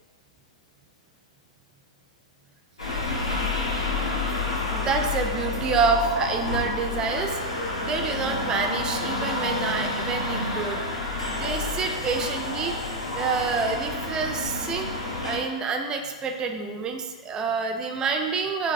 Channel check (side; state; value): both; normal; correlation 0.07